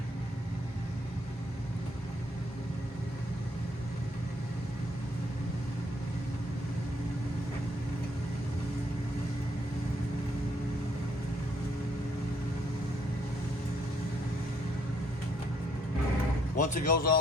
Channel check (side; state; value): both; normal; correlation 0.69